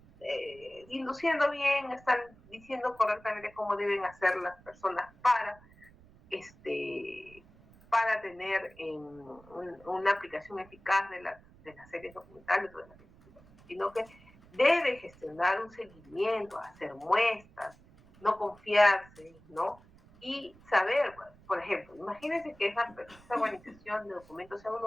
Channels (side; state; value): right; noise; rumble, 25 dB below the sound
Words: induciendo bien, están diciendo correctamente cómo deben hacer las personas para tener una aplicación eficaz de las series documentales o de las sino que debe gestionar un seguimiento, hacer muestras, no confiarse, ¿no? Y saber, por ejemplo, imagínense que esa organización de documentos sea